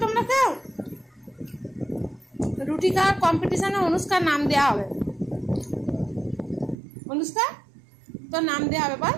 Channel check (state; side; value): drops out; left; at 6.8 s